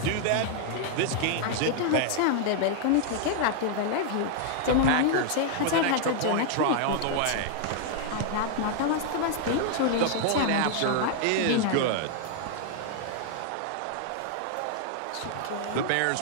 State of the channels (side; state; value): both; different; correlation 0.00